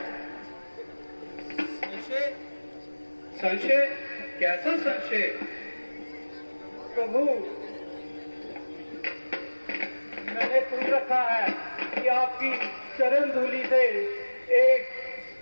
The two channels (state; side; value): inverted; both; correlation -1.00